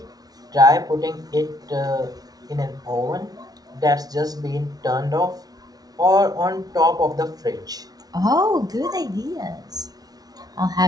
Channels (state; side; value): late; left; 0.19 ms